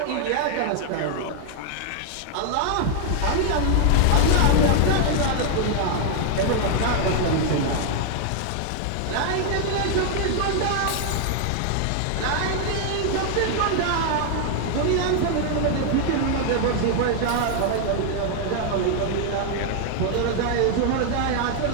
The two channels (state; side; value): different; both; correlation 0.00